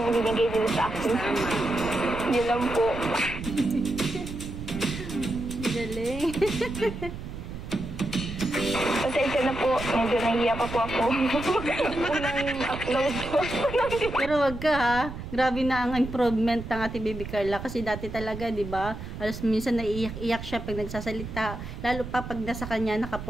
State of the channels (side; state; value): right; noise; rumble, 9 dB below the sound